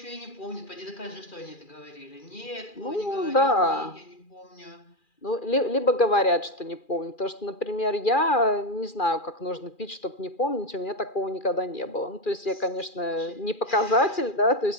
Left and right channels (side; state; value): right; late; 2.4 ms